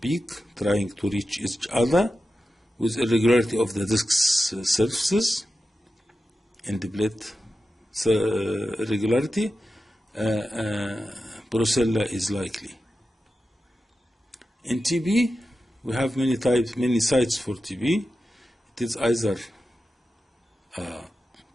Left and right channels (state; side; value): normal; both; correlation 0.92